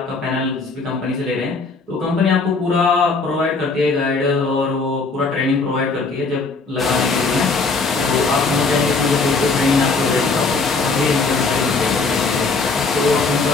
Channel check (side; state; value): right; quieter; 4.1 dB